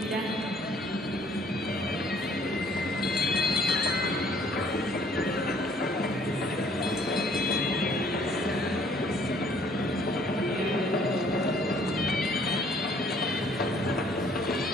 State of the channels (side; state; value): both; normal; correlation 0.60